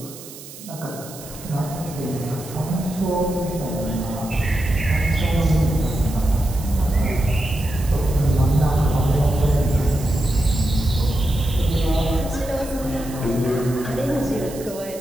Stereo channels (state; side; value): noise; right; hiss, 16 dB below the sound